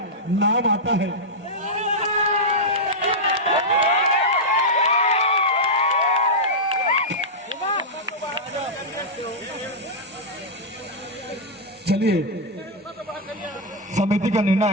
चलिए समिति का निर्णय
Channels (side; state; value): both; normal; correlation -0.07